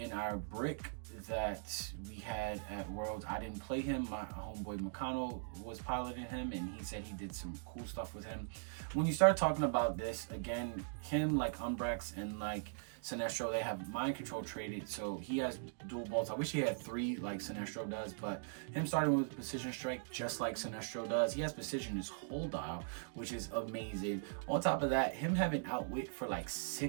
our brick that we had at Worlds. I didn't play him. My homeboy Makano was piloting him, and he said he did some cool stuff with him. When you start talking about this, again, him, like Umbrex and like Sinestro, they have mind control traded, so he has dual bolts. I wish he had 3 like Sinestro does, but him starting with precision strike just like Sinestro does. He has precision his whole dial, which is amazing. On top of that, him having outwit for like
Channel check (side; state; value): left; silent; digital silence